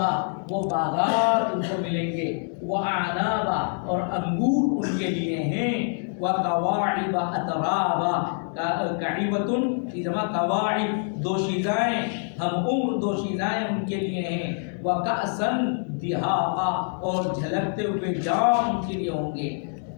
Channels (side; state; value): right; silent; 59 dB below the other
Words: وہ باغات ان کو ملیں گے، واعنابا اور انگور ان کے لیے ہیں، وکواعب اترابا، کعیبۃ کی جمع کواعب دوشیزائیں، ہم عمر دوشیزائیں ان کے لیے ہیں، وکأسا دہاقا اور جھلکتے ہوئے جام ان کے لیے ہوں گے۔